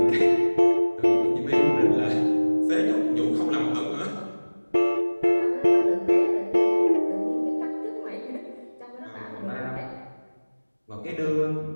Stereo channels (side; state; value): both; inverted; correlation -1.00